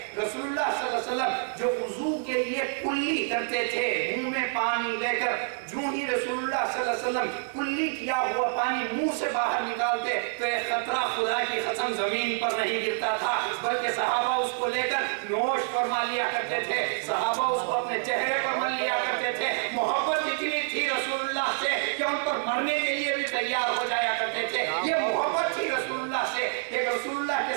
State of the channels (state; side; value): silent; left; 60 dB below the other